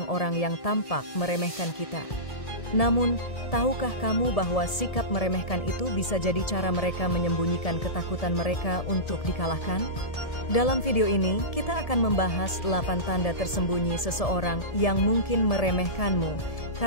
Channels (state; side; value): late; right; 1.7 ms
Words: yang tampak meremehkan kita. Namun, tahukah kamu bahwa sikap meremehkan itu bisa jadi cara mereka menyembunyikan ketakutan mereka untuk dikalahkan? Dalam video ini, kita akan membahas 8 tanda tersembunyi seseorang yang mungkin meremehkanmu